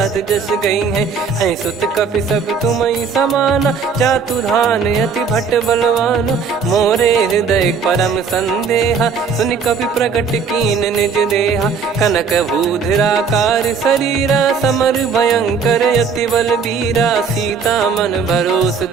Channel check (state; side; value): quieter; left; 5.7 dB